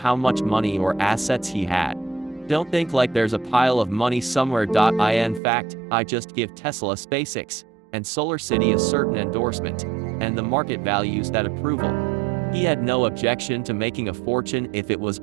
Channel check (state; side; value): drops out; left; at 5.4 s